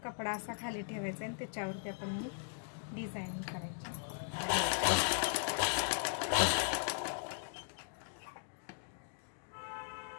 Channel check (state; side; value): silent; right; digital silence